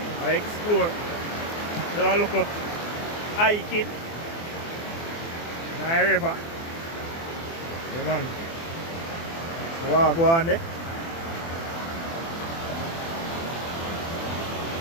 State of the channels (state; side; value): late; right; 24 ms